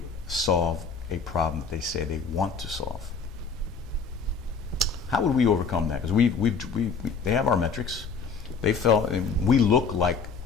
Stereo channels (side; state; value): right; quieter; 5.2 dB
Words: solve a problem that they say they want to solve. How would we overcome that? Because they have our metrics. They felt, and we look like